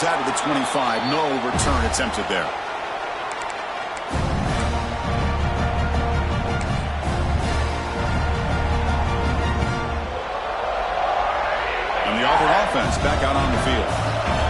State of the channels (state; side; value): identical; both; correlation 1.00